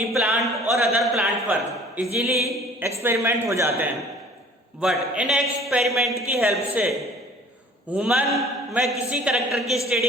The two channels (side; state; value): both; normal; correlation 0.50